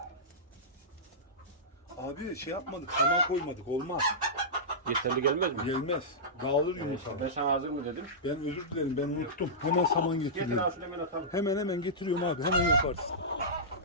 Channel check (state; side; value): normal; both; correlation -0.15